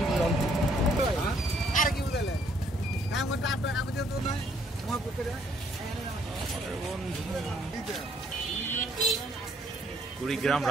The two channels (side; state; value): both; normal; correlation 0.67